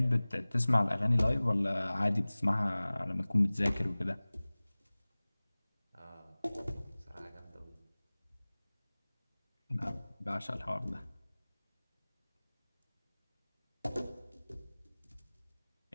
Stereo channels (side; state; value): both; inverted; correlation -0.99